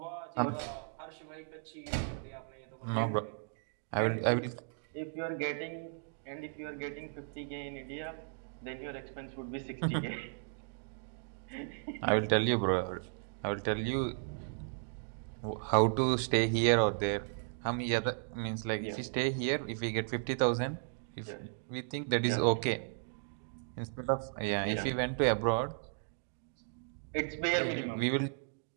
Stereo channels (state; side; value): silent; left; digital silence